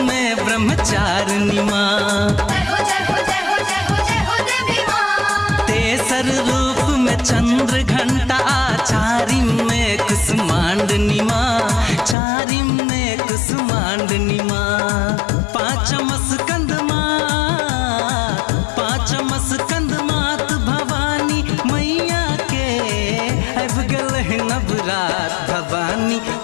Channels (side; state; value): right; drops out; at 12.2 s